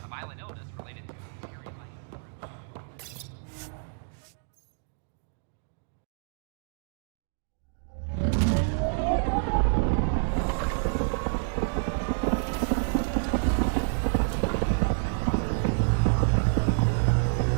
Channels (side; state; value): left; silent; digital silence